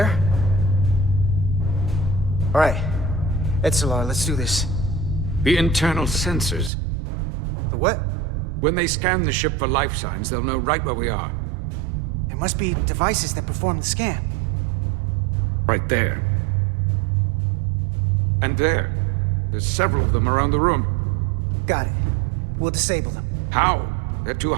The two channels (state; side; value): drops out; left; at 6.7 s